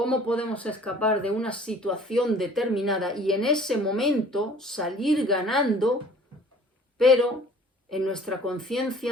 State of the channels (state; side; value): normal; both; correlation 0.51